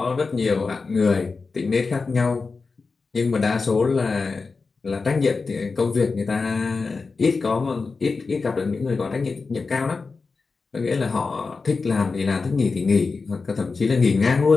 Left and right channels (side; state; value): right; quieter; 4.4 dB